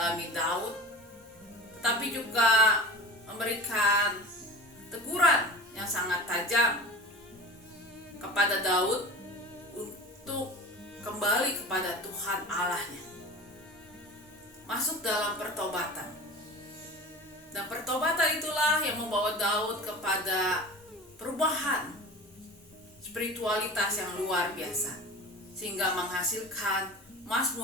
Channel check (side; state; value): both; normal; correlation 0.35